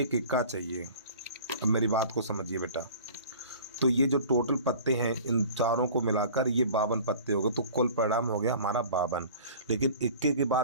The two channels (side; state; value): both; inverted; correlation -0.43